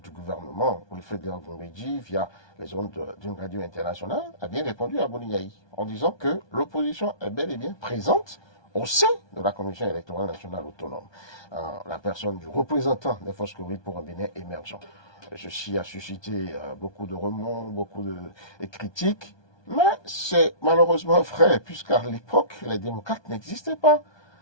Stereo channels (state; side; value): late; right; 1.2 ms